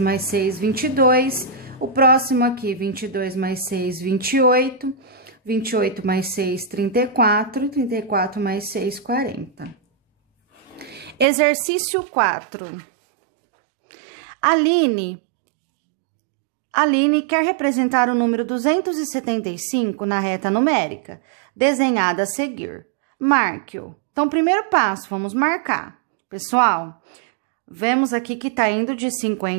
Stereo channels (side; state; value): left; drops out; at 11.2 s